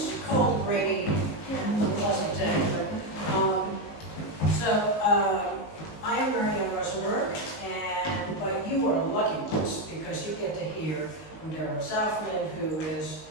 cold, rainy, pleasant day. I am Marianne Rosenberg, but you are lucky ones because you get to hear from Deborah Zafman, who is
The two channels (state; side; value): late; right; 19 ms